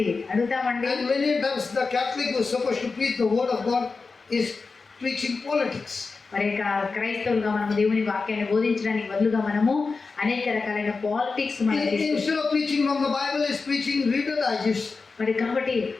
అడుగుతామండి. And many times the Catholic who is supposed to preach the word of God is preaching politics. మరి క్రైస్తవులుగా మనము దేవుని వాక్యాన్ని బోధించడానికి బదులుగా మనము అనేక రకాలైన politics Instead of preaching from the Bible, is preaching Reader Digest. మరి కాబట్టి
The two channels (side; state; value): right; quieter; 4.3 dB